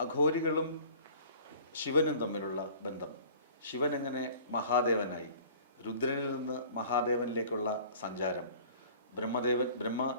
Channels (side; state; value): both; inverted; correlation -0.48